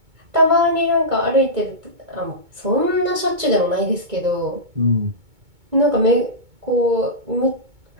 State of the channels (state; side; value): late; left; 2.2 ms